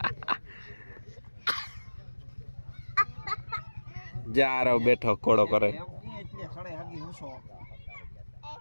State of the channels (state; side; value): inverted; both; correlation -1.00